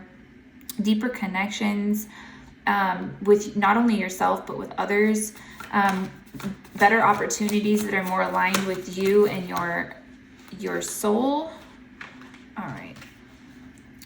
deeper connections with not only yourself, but with others, better opportunities that are more aligned with you and your soul. All right.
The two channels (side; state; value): both; identical; correlation 1.00